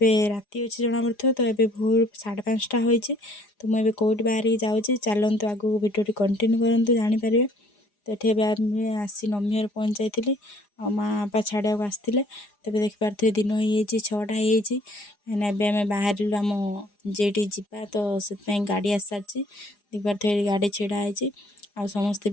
राति अच्छे जना पड़ो तो ये भोर 5:30 होती तो मुझे कौट बाहर जाऊँगी चलतु आगू भिडियो कंटिन्यू करूँ जानीपर। तो ये आसी नमी घर पहुँच जाइली आ माँ बापा छाड़ा आसते तब देखिपे दिन हो 6टा होमें बाहर आम जेटी जावा तो से गाड़ी आस सारी देखिपे गाड़ी छिड़ाई आ समस्ते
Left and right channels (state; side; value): late; right; 4.9 ms